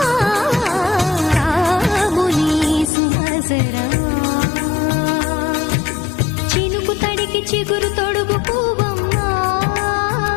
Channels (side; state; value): right; drops out; at 2.9 s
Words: రాముని సుమసరమా. చినుకు తడికి చిగురు తొడుగు పువ్వమ్మా,